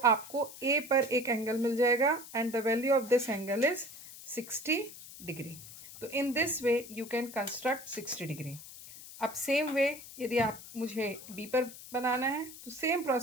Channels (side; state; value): left; noise; hiss, 15 dB below the sound